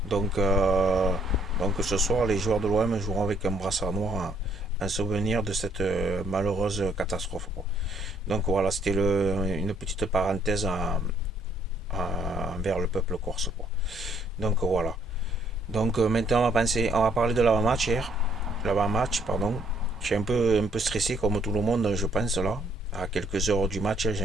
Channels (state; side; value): normal; both; correlation 0.66